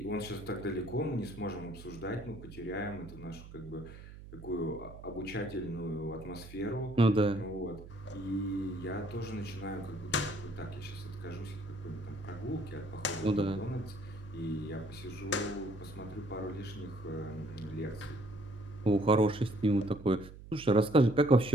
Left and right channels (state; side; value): noise; right; hum, 15 dB below the sound